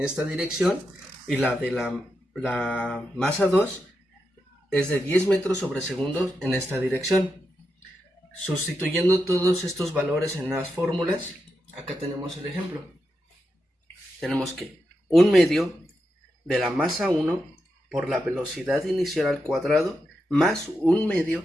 dirección y la de la masa 2 es de 10 metros sobre segundo en esta dirección. Sustituyendo todos estos valores en las fórmulas, acá tenemos el ejemplo. Tenemos que un medio de la masa 1 por la velocidad inicial al cuadrado más un medio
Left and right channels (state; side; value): normal; both; correlation 0.86